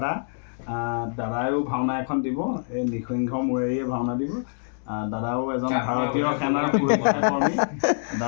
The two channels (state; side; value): silent; right; digital silence